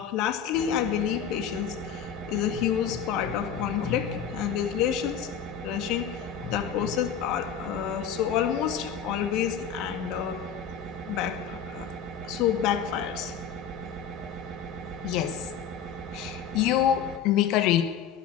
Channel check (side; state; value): right; quieter; 7.9 dB